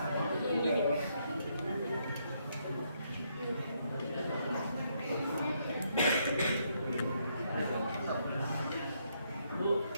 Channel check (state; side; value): inverted; both; correlation -0.75